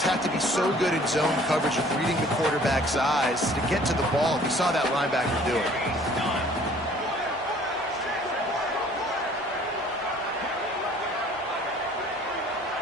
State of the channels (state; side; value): normal; both; correlation 0.54